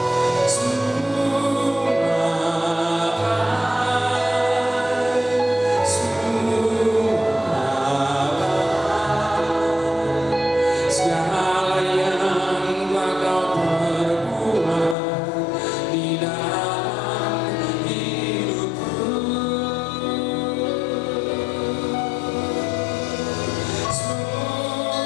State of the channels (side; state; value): right; drops out; at 15.0 s